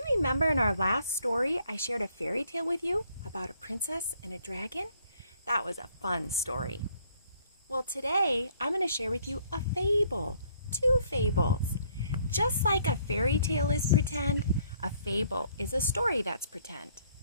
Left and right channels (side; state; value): both; inverted; correlation -0.64